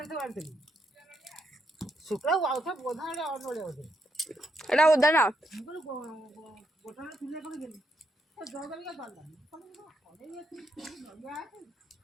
बांधली शुक्ला आउथा बोधा रे और नड़िया होते एटा उधर ना गोटा चुली को गेली तो जगल का बांधा अरे ये नड़िया है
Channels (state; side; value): normal; both; correlation 0.79